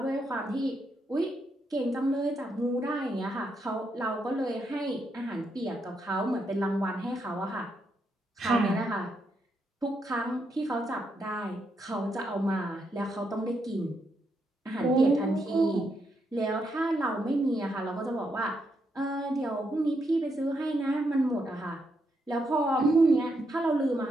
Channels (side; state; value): both; normal; correlation 0.80